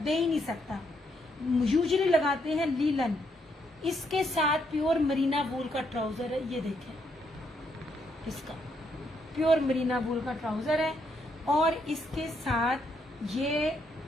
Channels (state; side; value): normal; both; correlation 0.75